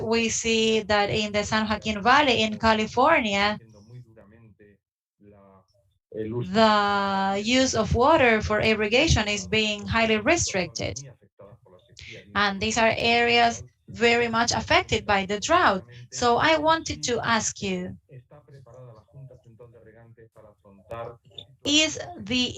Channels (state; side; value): identical; both; correlation 1.00